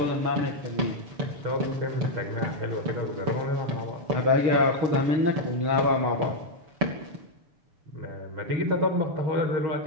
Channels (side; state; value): left; late; 6.9 ms